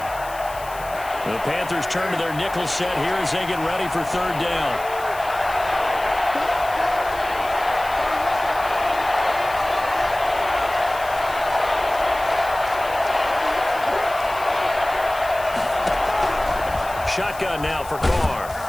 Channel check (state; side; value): noise; left; hiss, 18 dB below the sound